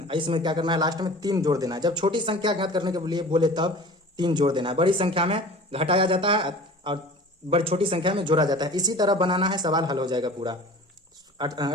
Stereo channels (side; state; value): both; normal; correlation 0.41